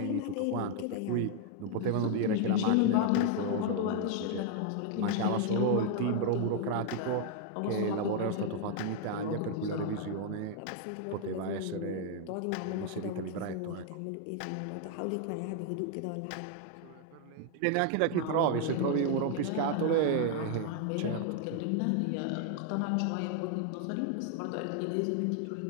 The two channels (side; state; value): both; different; correlation 0.00